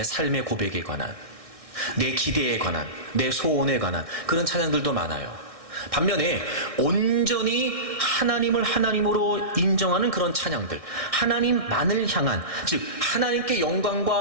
삶의 고백에 관한, 내 기대에 관한, 내 소원에 관한 그런 찬양들도 많아요. 반면에 온전히 하나님을 하나님으로 인정하는 그런 찬양들, 하나님만을 향한, 즉 하나님께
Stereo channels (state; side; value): late; left; 1.6 ms